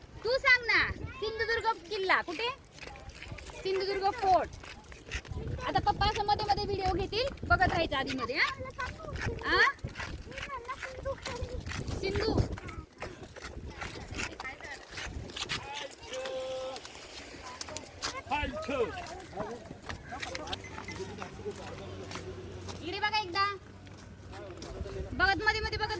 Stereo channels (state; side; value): identical; both; correlation 1.00